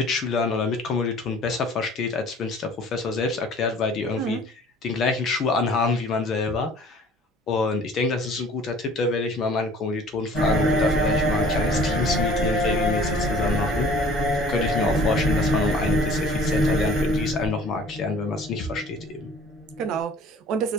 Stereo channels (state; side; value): normal; both; correlation 0.50